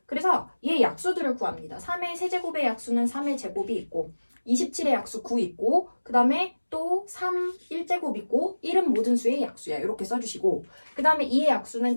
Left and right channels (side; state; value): both; inverted; correlation -1.00